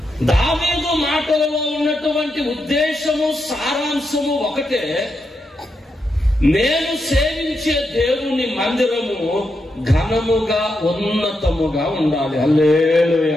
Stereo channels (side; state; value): both; normal; correlation 0.84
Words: దావీదు మాటలలో ఉన్నటువంటి ఉద్దేశము, సారాంశము ఒకటే. నేను సేవించే దేవుని మందిరము ఘనముగా ఉన్నతముగా ఉండాలి.